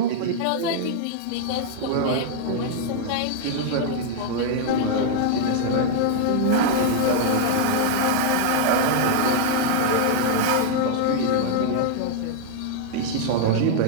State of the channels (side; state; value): both; different; correlation -0.01